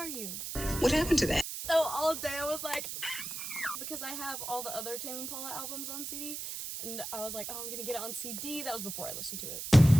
you? What happened to that? So all day I was like, because I have all the other Tame Impala albums on CD, and I was like, oh, I'm gonna get it on CD. That was before I listened to it.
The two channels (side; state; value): right; noise; hiss, 6 dB below the sound